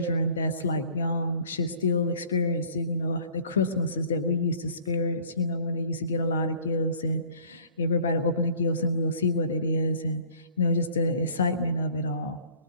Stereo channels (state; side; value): inverted; both; correlation -0.54